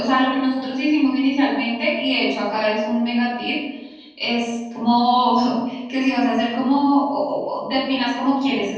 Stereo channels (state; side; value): identical; both; correlation 1.00